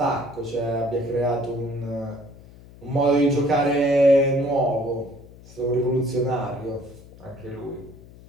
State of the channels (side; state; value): left; noise; hum, 21 dB below the sound